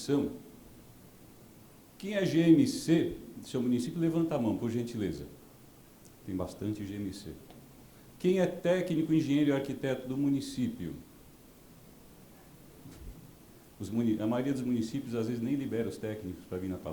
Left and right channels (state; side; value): identical; both; correlation 1.00